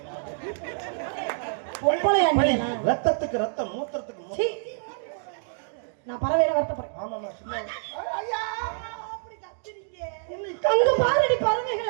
பொம்பளையா நீ? ரத்தத்துக்கு ரத்தம், மூத்திரத்துக்கு நான் பறவையில வருத்தப்படுறேன். ஆமாமா சும்மா அங்க பாருடி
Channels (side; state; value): left; silent; digital silence